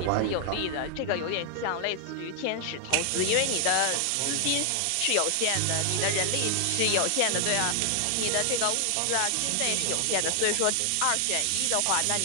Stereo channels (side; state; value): both; different; correlation 0.00